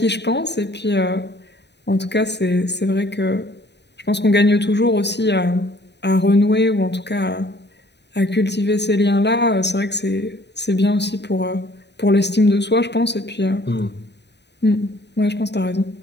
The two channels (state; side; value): late; right; 0.50 ms